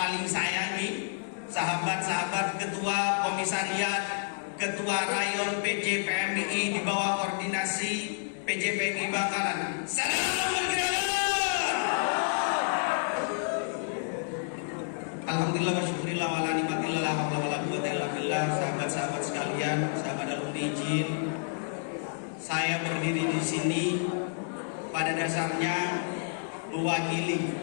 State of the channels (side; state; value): right; silent; digital silence